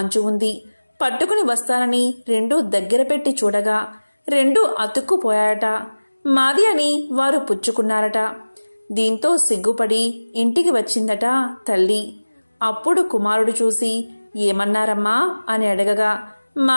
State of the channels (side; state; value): both; inverted; correlation -1.00